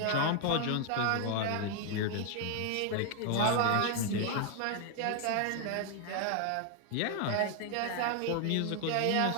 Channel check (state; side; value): different; both; correlation 0.00